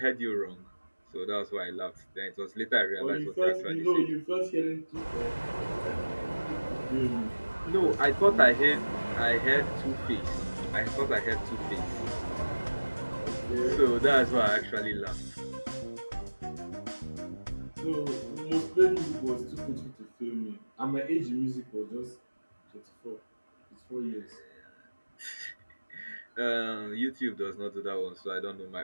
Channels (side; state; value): both; inverted; correlation -1.00